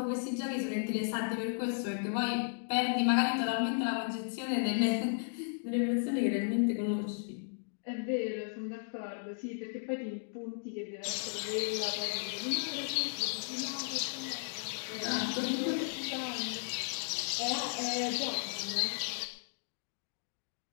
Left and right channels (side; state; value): right; silent; digital silence